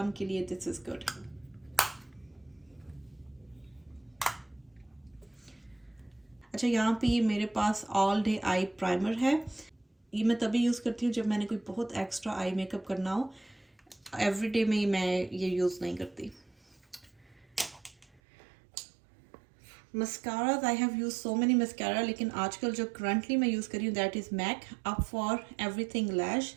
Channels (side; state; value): left; drops out; at 18.2 s